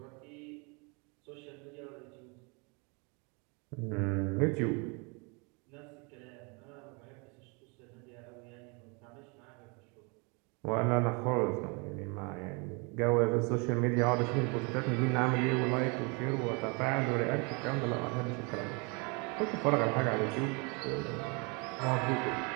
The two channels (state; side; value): quieter; left; 31.8 dB